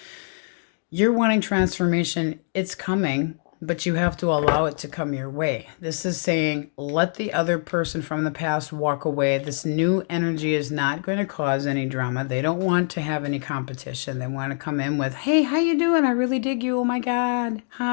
you're wanting transformation. It's coming, but you have to allow it to come your way. This is saying, let the other person from the past walk away. This new energy is not going to cause any drama. They don't want to have any competition. They want to come in with, hey, how you doing? I really dig you. Oh my God.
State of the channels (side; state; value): right; silent; 63 dB below the other